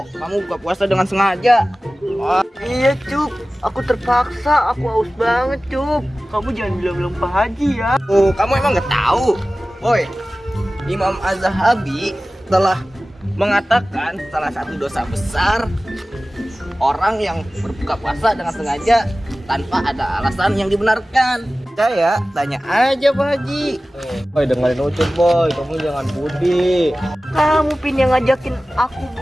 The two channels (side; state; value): both; normal; correlation 0.96